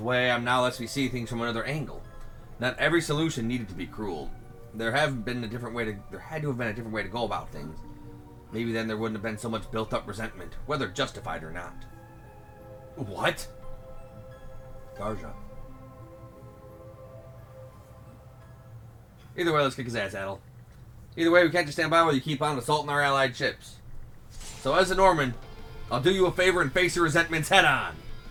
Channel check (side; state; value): both; identical; correlation 1.00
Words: way I am now lets me see things from another angle. Not every solution needed to be cruel. There had to have been a different way to go about things. Maybe then there wouldn't have been so much built-up resentment, whether justified or not. What? Garja. Either way, let's kick his ass, Adel. Either way, we can't just stand by while you keep on assaulting our allied ships. So as a Norman, I'll do you a favor and face your resentments head on.